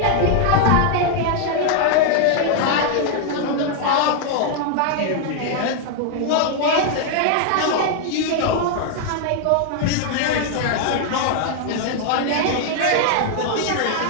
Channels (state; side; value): different; both; correlation 0.00